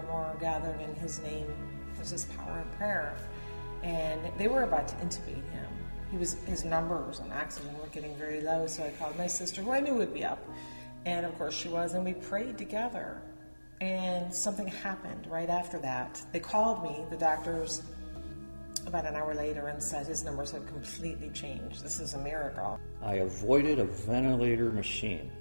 more are gathered in his name, there's this power in prayer. And they were about to intubate him. His numbers on oxygen were getting very low, so I called my sister, who I knew would be up. And of course she was, and we prayed together. And something happened right after that. They called me, the doctors, about an hour later, and said his numbers had completely changed. This is a miracle. I avoided a ventilator machine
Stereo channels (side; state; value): both; inverted; correlation -1.00